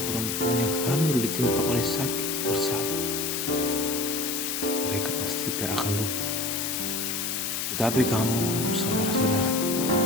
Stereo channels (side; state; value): left; noise; hiss, 1 dB below the sound